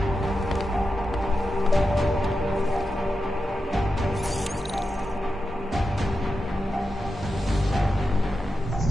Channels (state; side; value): normal; both; correlation 0.90